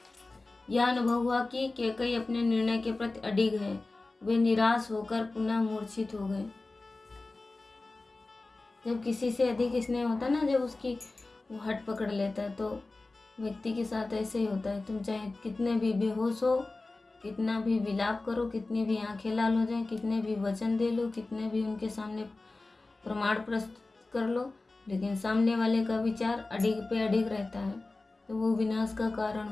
यह अनुभव हुआ कि कैकेयी अपने निर्णय के प्रति अडिग है। वे निराश होकर पुनः मूर्छित हो गए। जब किसी से अधिक स्नेह होता है ना, जब उसकी वो हट पकड़ लेता है, तो व्यक्ति के साथ ऐसे ही होता है। तुम चाहे कितने भी बेहोश हो, कितना भी विलाप करो, कितनी भी आंखें लाल हो जाए, कितने भी वचन दे लो, कितने भी उनके सामने प्रमाण प्रस्तुत कर लो, लेकिन सामने वाले का विचार अडिग पे अडिग रहता है, तो वो विनाश का कारण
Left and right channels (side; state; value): right; quieter; 3.3 dB